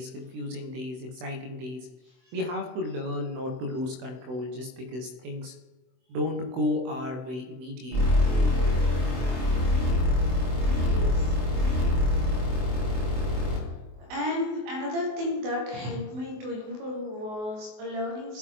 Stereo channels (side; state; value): left; late; 24 ms